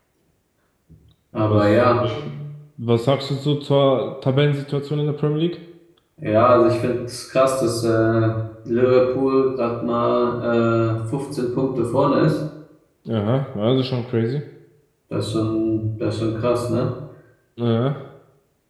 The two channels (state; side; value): identical; both; correlation 1.00